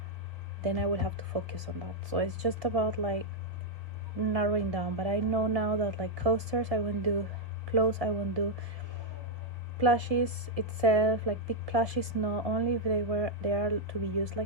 then I will have to focus on that. So it's just about like narrowing down. But I know now that like coasters I won't do, clothes I won't do, plushies itself, like big plushies, no, only if they are to be used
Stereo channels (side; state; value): left; late; 1.7 ms